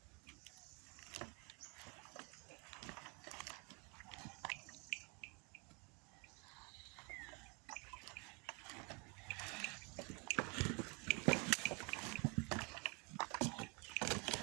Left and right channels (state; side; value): quieter; left; 31.0 dB